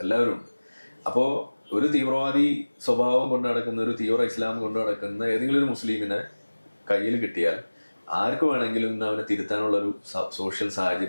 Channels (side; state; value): both; inverted; correlation -1.00